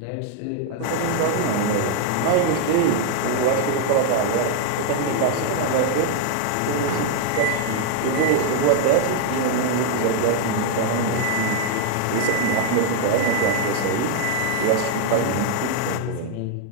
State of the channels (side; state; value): both; different; correlation 0.00